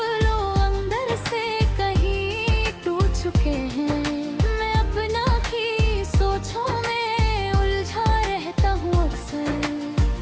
लोग अंदर से कहीं टूट चुके हैं। मैं अपना ही सोचों में उलझा रहता हूँ अक्सर,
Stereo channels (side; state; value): both; identical; correlation 1.00